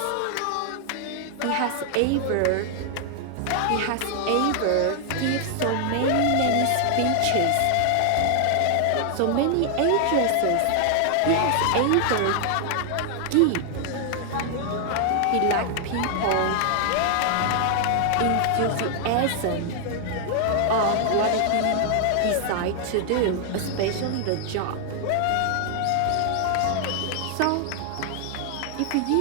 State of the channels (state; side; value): different; both; correlation 0.00